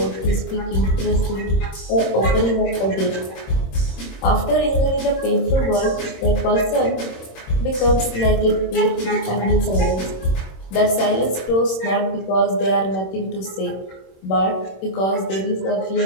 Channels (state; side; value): late; right; 26 ms